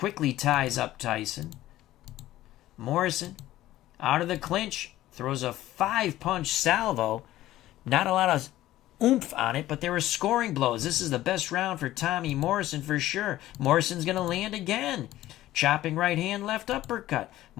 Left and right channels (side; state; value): right; quieter; 14.9 dB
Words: ties up Tyson. Morrison, out of the clinch, throws a 5-punch salvo. Not a lot of oomph on it, but there were scoring blows. This is the best round for Tommy Morrison for sure. Morrison's going to land again. Chopping right hand, left uppercut.